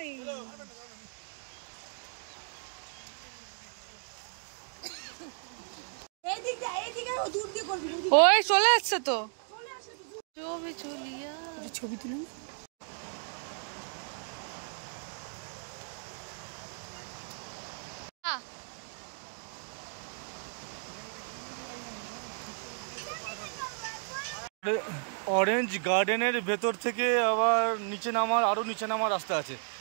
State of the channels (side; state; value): left; silent; 55 dB below the other